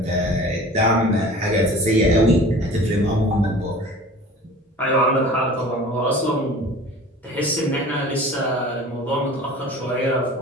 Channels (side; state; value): both; normal; correlation 0.42